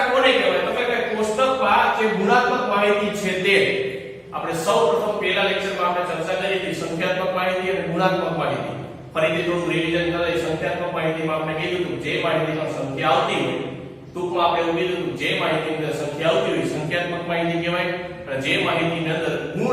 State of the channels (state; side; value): identical; both; correlation 1.00